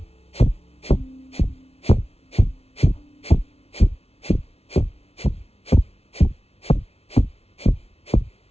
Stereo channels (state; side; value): late; right; 0.30 ms